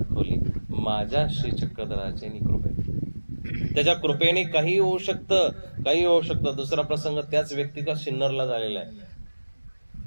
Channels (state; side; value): inverted; both; correlation -1.00